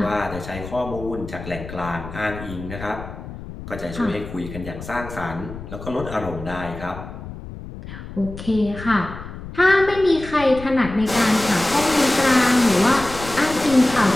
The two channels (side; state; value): left; noise; rumble, 12 dB below the sound